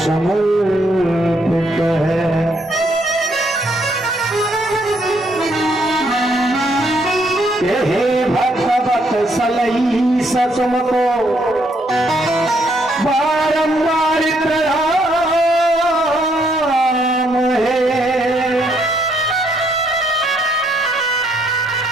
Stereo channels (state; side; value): normal; both; correlation 0.72